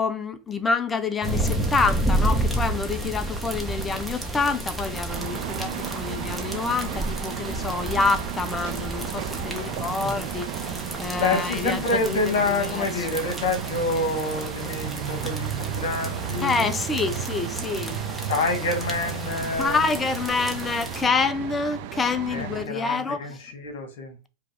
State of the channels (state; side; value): normal; both; correlation 0.39